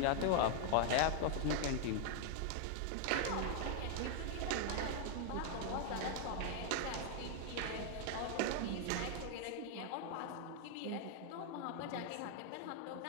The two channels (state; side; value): different; both; correlation 0.00